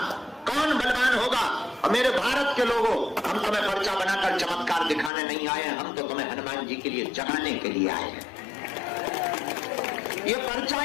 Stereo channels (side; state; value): right; drops out; at 5.1 s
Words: कौन बलवान होगा। और मेरे भारत के लोगों, हम तुम्हें पर्चा बनाकर चमत्कार दिखाने नहीं आए हैं, हम तो तुम्हें हनुमान जी के लिए जगाने के लिए आए हैं। ये पर्चा,